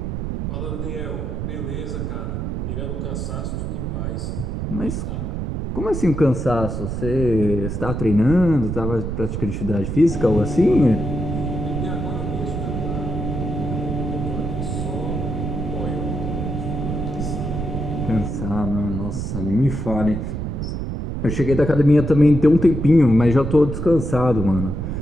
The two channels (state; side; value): noise; right; rumble, 3 dB below the sound